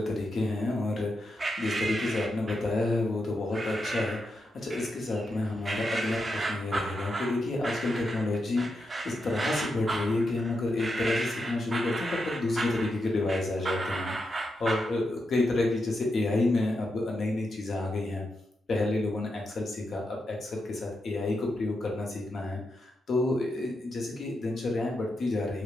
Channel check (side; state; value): both; normal; correlation 0.86